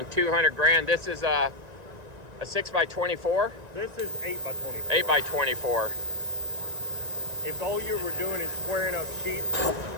200 grand. This is a 6x24? This is 8x24. 8x24. If all you were doing is squaring up sheets.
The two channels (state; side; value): late; left; 1.9 ms